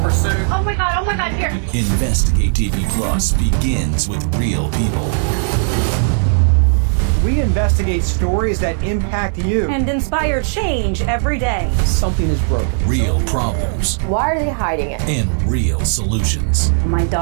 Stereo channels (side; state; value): left; silent; 68 dB below the other